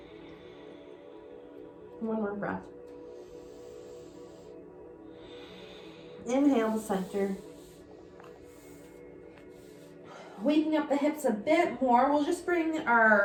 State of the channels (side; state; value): both; identical; correlation 1.00